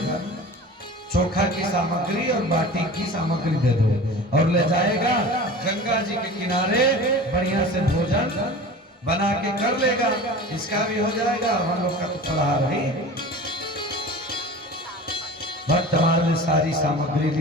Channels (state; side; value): normal; both; correlation 0.37